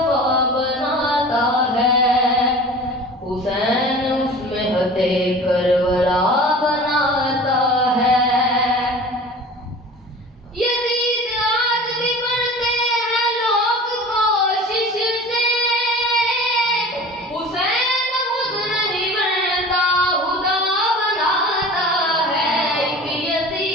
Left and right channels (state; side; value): normal; both; correlation 0.39